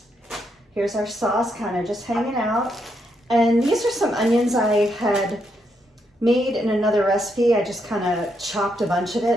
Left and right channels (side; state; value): both; normal; correlation 0.78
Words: Here's our sauce kind of just hanging out. And these are some onions I had made in another recipe. I just kind of chopped a bunch of it